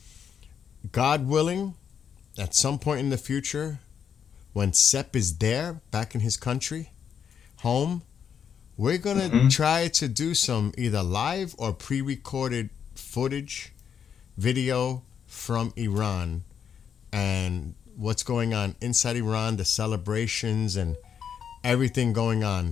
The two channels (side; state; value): right; quieter; 7.7 dB